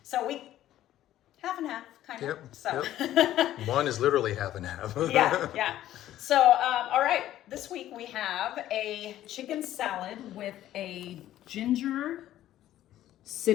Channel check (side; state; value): right; quieter; 13.1 dB